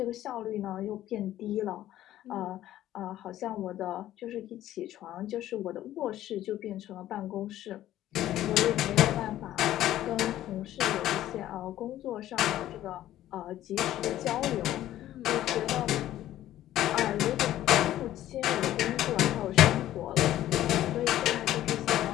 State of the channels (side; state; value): right; quieter; 13.3 dB